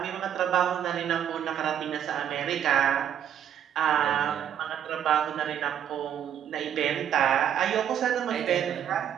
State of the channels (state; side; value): quieter; left; 9.6 dB